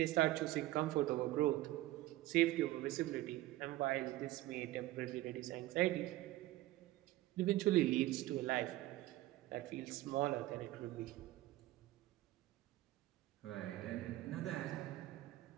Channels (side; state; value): left; quieter; 16.7 dB